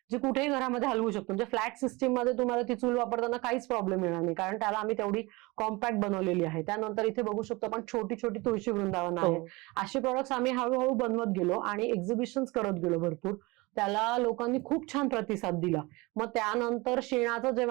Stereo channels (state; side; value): quieter; left; 23.8 dB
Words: जी कुठेही घरामध्ये हलवू शकतो. म्हणजे फ्लॅट सिस्टीम मध्ये तुम्हाला ती चूल वापरताना काहीच प्रॉब्लेम येणार नाही, कारण त्याला आम्ही तेवढी कॉम्पॅक्ट बनवलेली आहे. त्यानंतर इथे बघू शकतो आपण छोटी छोटी तुळशी वृंदावन आहेत. अशी प्रोडक्ट्स आम्ही हळूहळू बनवत गेलो आणि एक्झिबिशन्स करत गेलो भरपूर. त्याला लोकांनी खूप छान प्रतिसाद दिला. मग त्यानंतर शेणाचं